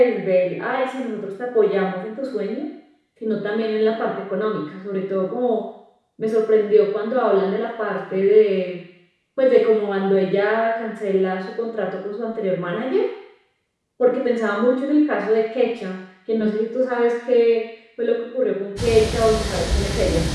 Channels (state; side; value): identical; both; correlation 1.00